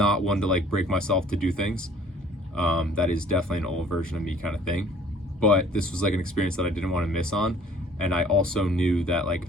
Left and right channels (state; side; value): normal; both; correlation 0.54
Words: one to like break myself to do things. That is definitely an old version of me kind of thing. But this was like an experience that I didn't want to miss on. And I also knew that like